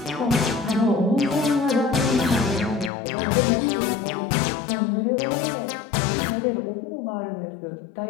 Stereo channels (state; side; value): drops out; right; at 2.9 s